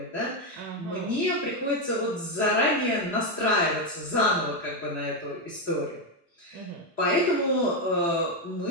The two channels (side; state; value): both; normal; correlation 0.06